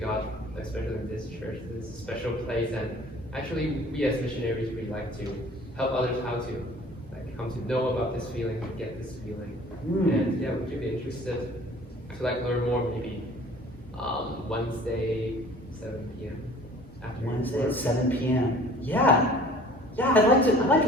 especially in this church. This is a special place, and actually, we as missionaries, we like to help others how to come to know about this feeling, get this feeling. And yeah, would you be interested to learn more maybe Wednesday, 7 p.m. after Wednesday work? at 7 p.m. Yeah, I'd like to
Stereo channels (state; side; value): normal; both; correlation 0.49